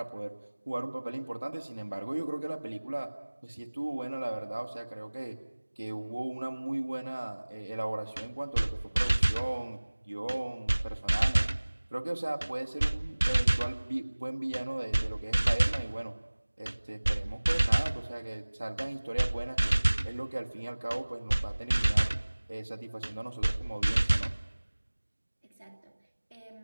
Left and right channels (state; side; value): inverted; both; correlation -1.00